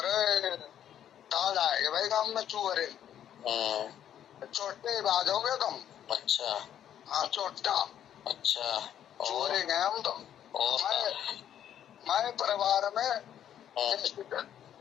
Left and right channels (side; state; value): right; quieter; 10.2 dB